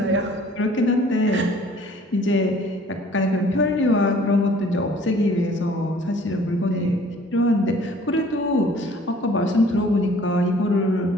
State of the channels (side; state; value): both; normal; correlation 0.53